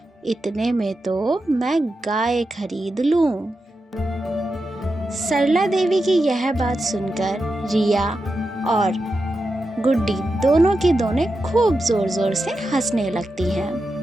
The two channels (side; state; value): both; normal; correlation 0.89